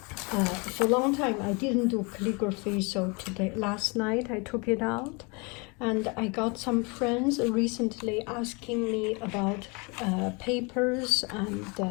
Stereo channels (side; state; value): right; quieter; 30.0 dB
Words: for a long time I didn't do calligraphy, so last night I took it out, and I got some friends recently asking me about papers and